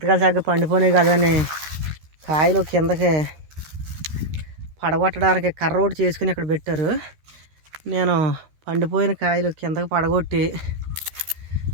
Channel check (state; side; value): late; left; 13 ms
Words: చక్కగా పండిపోయినాయి కదని కాయలు కిందకి పడగొట్టడానికి కర్ర ఒకటి చేసుకుని ఇక్కడ పెట్టారు నేను పండిపోయిన కాయలు కిందకి పడగొట్టి